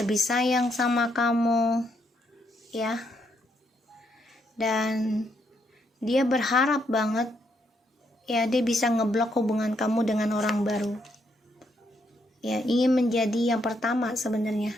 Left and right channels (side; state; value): both; normal; correlation 0.76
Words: sayang sama kamu, ya. Dan dia berharap banget, ya, dia bisa ngeblok hubungan kamu dengan orang baru. Ya, ingin menjadi yang pertama sebenarnya